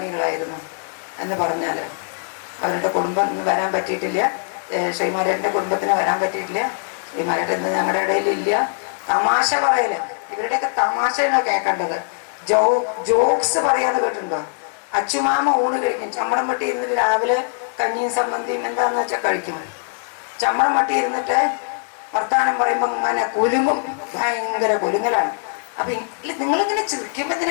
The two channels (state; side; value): silent; right; 64 dB below the other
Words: എന്ന് പറഞ്ഞാൽ. അവരുടെ കുടുംബം വരാൻ പറ്റിയിട്ടില്ല, ശ്രീമാരേട്ടൻ്റെ കുടുംബത്തിന് വരാൻ പറ്റിയിട്ടില്ല. ശ്രീമാരേട്ടൻ ഞങ്ങളുടെ ഇടയിലില്ല. തമാശ പറയല്, ഇവരുടെയൊക്കെ തമാശയാണ് കേൾക്കേണ്ടത്. ജോക്സ് പറയാന്ന് കേട്ടിട്ടുണ്ടോ? അച്ചുമാമ ഊണ് കഴിക്കും. ചമ്മടം വെട്ടി ഇരുന്നിട്ട് രാവിലെ കഞ്ഞിയും സമ്മന്തിയും എന്താന്ന് വെച്ചാൽ കഴിക്കും. ചമ്മടം വെട്ടി ഇരുന്നിട്ട് വർത്താനം പറയുമ്പോൾ ഇങ്ങനെ കുലുങ്ങും, ഭയങ്കര കുലുങ്ങലാണ്. അപ്പൊ നിങ്ങളിങ്ങനെ ചിരിക്കുമ്പോ